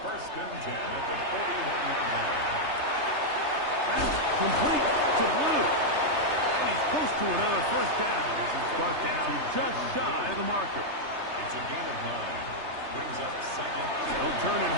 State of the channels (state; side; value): late; left; 3.3 ms